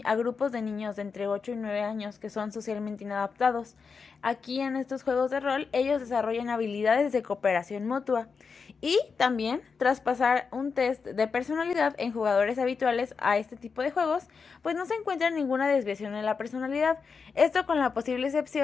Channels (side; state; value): right; quieter; 5.3 dB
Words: a grupos de niños de entre 8 y 9 años que son socialmente inadaptados. Aquí en estos juegos de rol ellos desarrollan habilidades de cooperación mutua y también traspasar un test de personalidad en jugadores habituales a este tipo de juegos, pues no se encuentra ninguna desviación en la personalidad. Esto con la posible